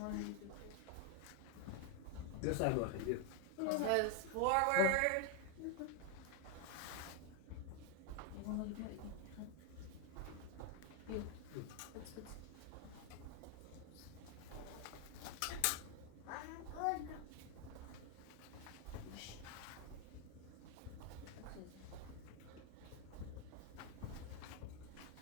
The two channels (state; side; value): different; both; correlation 0.01